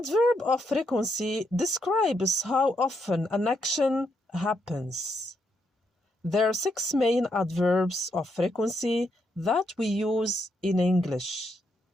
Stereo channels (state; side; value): normal; both; correlation 0.79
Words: of frequency describes how often an action happens. There are 6 main adverbs of frequency that we use in English.